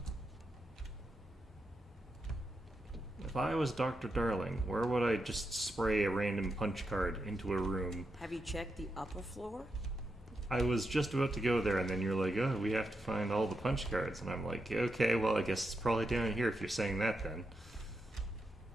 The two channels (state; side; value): normal; both; correlation 0.85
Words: If I was Dr. Darling, where would I just spray a random punch card into a room? Have you checked the upper floor? I was just about to go there, and then you're like, oh, we have to find all the punch cards. And I'm like, okay, well, I guess it's probably down here if you're saying that then.